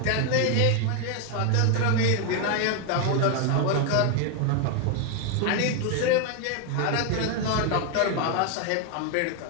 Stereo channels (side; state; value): both; different; correlation 0.01